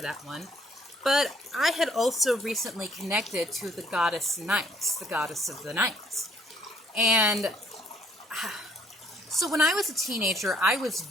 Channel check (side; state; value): both; normal; correlation 0.63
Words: that one. But I had also recently connected to the goddess Nyx, the goddess of the night. And so when I was a teenager, I was